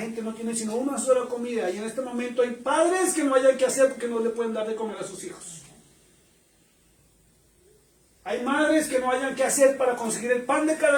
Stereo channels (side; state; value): both; identical; correlation 1.00